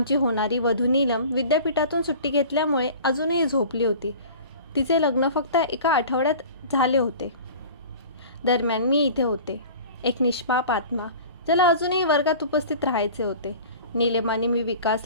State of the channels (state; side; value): inverted; both; correlation -0.41